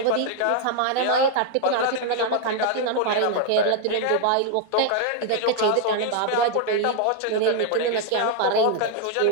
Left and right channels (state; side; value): different; both; correlation 0.00